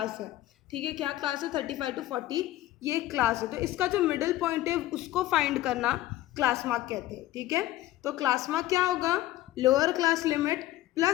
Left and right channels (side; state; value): right; quieter; 15.5 dB